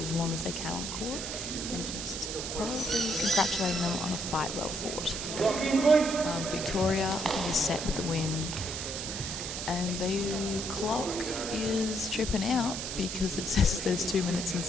as long as they can on court, and just probably congratulating them on a fight well fought. Victoria, I think, is set with the win, and the clock is tripping out because it says there's 2 minutes and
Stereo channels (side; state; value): right; noise; hiss, 5 dB below the sound